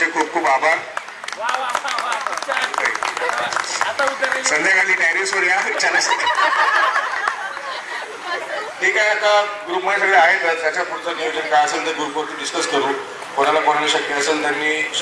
खूप खूप आभार. संध्याकाळी टेरेसवर या ठीक आहे. आता ग्रुपमध्ये सगळे आहेत त्याच्या पुढचं नियोजन काय असेल ते ग्रुपवरती डिस्कस करू. कोणाला शक्य असेल त्यांनी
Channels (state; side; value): identical; both; correlation 1.00